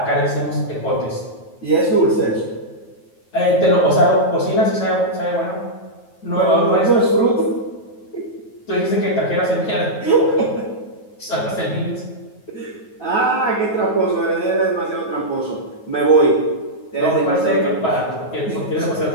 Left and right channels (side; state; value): right; late; 9.3 ms